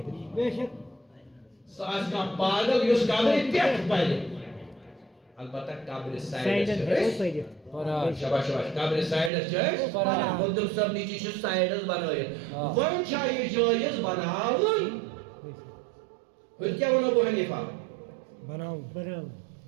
سو آج کا پاگل اس قبری پیٹ پڑھیں البتہ قبر سائڈ ہے شباش شباش قبر سائڈ ہے مدر صاحب نیچے چھو سائڈز بنائے ون چاہیے جائز بناون پھر کیا ونو بو حنیفہ بناون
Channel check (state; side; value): drops out; left; at 9.3 s